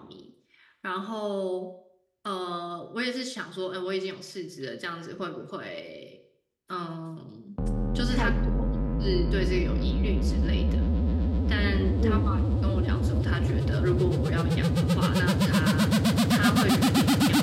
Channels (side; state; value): both; identical; correlation 1.00